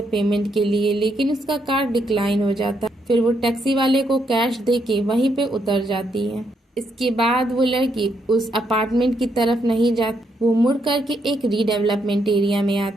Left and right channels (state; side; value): normal; both; correlation 0.77